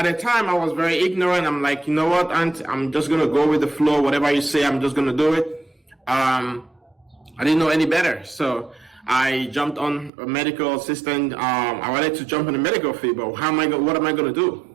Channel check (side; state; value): left; drops out; at 10.1 s